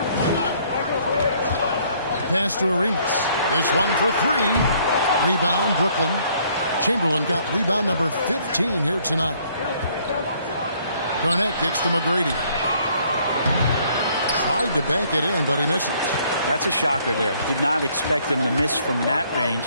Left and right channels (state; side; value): inverted; both; correlation -0.64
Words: Pass to Arenas. This one for 3. Rebound, Brooklyn. Chamberlain got rebound number 15 here tonight. Garnett kicks to McGrady. Tried to bank it in, but he misses. That's a shocker there. Did not expect him to miss from that range.